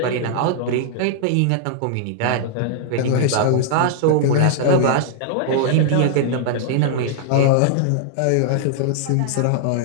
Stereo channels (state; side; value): different; both; correlation -0.01